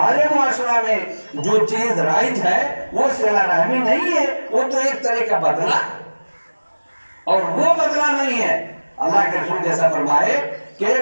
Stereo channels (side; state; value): both; inverted; correlation -1.00